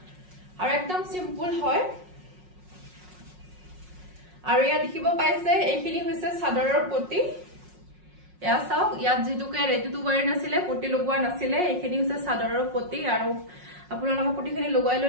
আৰু একদম সিম্পল হয় আৰু ইয়া দেখিব পাইছে এইখিনি হৈছে চাদৰৰ পটি ইয়া চাও ইয়াত যেটুকে ৰেডি টু ওয়্যাৰ নাছিলে পটি লগোৱা নাছিলে এইখিনি হৈছে চাদৰৰ পটি আৰু আপোনালোকে পটিখিনি লগাই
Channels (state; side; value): late; left; 5.5 ms